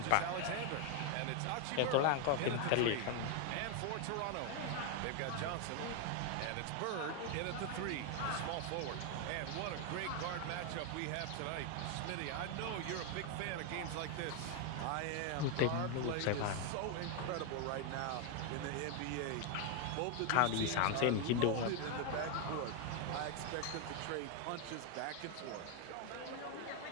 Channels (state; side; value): different; both; correlation 0.01